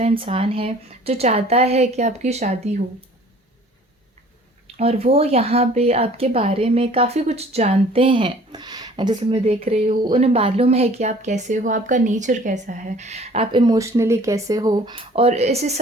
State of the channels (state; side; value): normal; both; correlation 0.51